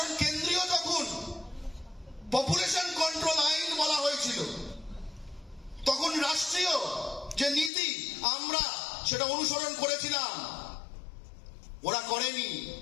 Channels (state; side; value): drops out; right; at 7.7 s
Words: কেন্দ্রীয় যখন পপুলেশন কন্ট্রোল আইন বলা হয়েছিল, তখন রাষ্ট্রীয় যে নীতি আমরা সেটা অনুসরণ করেছিলাম, ওরা করেনি।